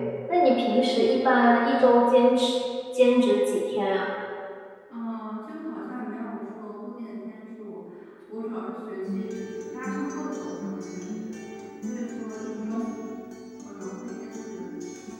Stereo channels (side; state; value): both; identical; correlation 1.00